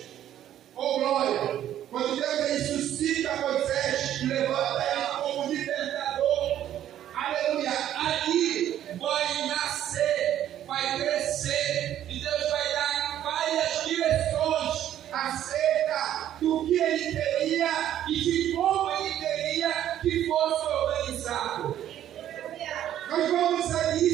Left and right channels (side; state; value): left; quieter; 11.4 dB